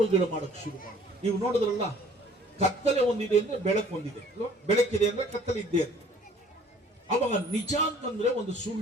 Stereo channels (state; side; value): normal; both; correlation 0.55